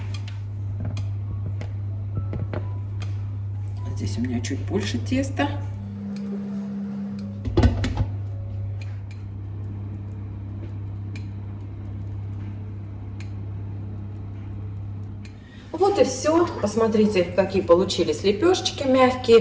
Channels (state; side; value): identical; both; correlation 1.00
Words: Здесь у меня чуть больше теста. Вот и все. Посмотрите, какие получились лепешечки